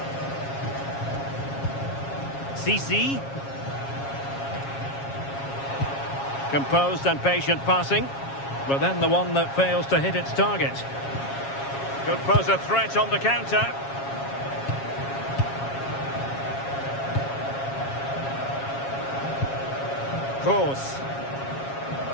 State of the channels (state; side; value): late; right; 7.3 ms